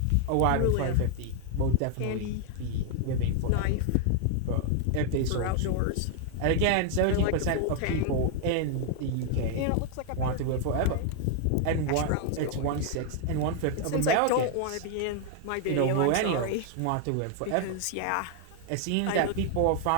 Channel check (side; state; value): both; different; correlation 0.00